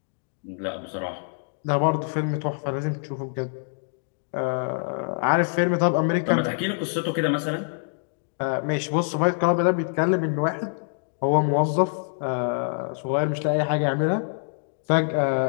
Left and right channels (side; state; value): right; silent; digital silence